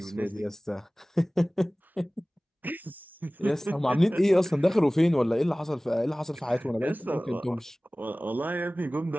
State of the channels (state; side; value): normal; both; correlation 0.98